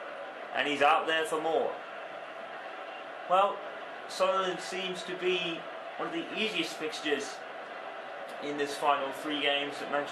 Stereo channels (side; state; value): both; identical; correlation 1.00